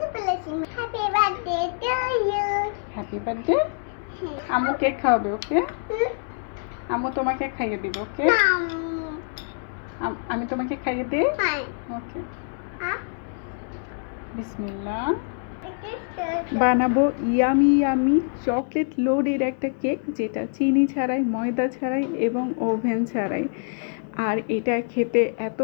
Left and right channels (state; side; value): silent; right; digital silence